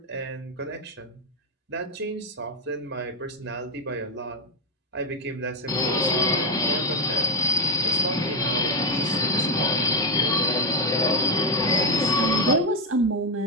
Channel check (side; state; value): both; normal; correlation 0.10